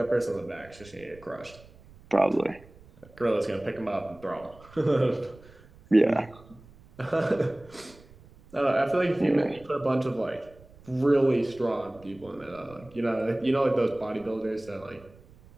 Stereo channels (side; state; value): right; noise; rumble, 24 dB below the sound